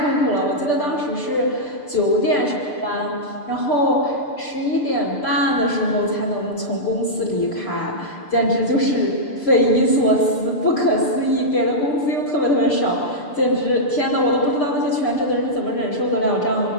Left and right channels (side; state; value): right; late; 6.7 ms